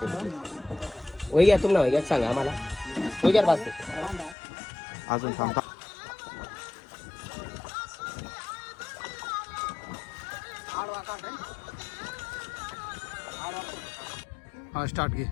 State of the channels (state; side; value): drops out; right; at 4.4 s